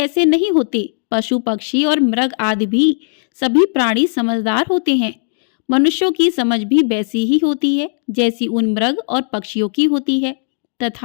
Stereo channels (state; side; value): silent; right; digital silence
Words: नहीं होते। पशु, पक्षी और मृग आदि भी सभी प्राणी समझदार होते हैं। मनुष्यों की समझ भी वैसी ही होती है जैसी उन मृग और पक्षियों की होती है,